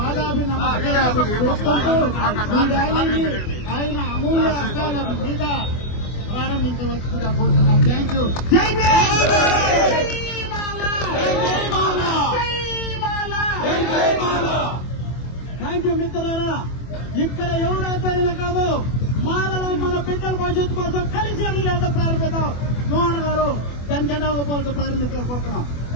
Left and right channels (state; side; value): late; right; 24 ms